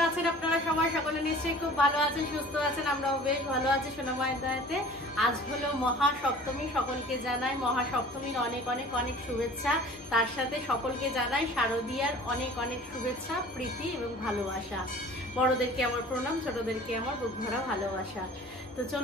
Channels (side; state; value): both; normal; correlation 0.45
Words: সকলে নিশ্চয়ই খুব ভালো আছেন, সুস্থ আছেন, আমরাও বেশ ভালো আছি সোনা মায়ের দয়াতে। আজ হলো মহাসপ্তমী, সকলকে জানাই মহাসপ্তমীর অনেক অনেক অনেক শুভেচ্ছা। তার সাথে সকলকে জানাই শারদীয়ার অনেক অনেক শুভেচ্ছা, প্রীতি এবং ভালোবাসা। বড়দেরকে আমার প্রণাম, ছোটদেরকে আমার বুক ভরা ভালোবাসা। তো